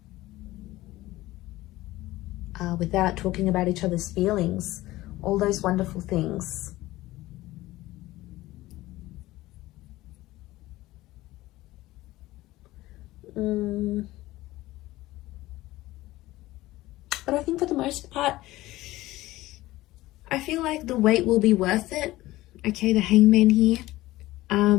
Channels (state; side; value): quieter; right; 17.5 dB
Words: Without talking about each other's feelings, all those wonderful things. But I think for the most part, I feel like the wait will be worth it. Okay, the Hangman here.